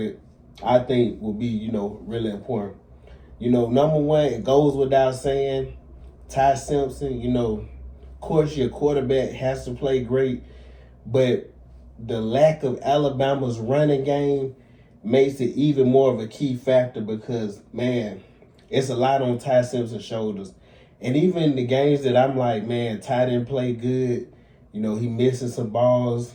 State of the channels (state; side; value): identical; both; correlation 1.00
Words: I think will be, really important. Number one, it goes without saying, Ty Simpson. Of course, your quarterback has to play great, but the lack of Alabama's running game makes it even more of a key factor because, man, it's a lot on Ty Simpson's shoulders. And even the games that I'm like, man, Ty didn't play good, he missing some balls.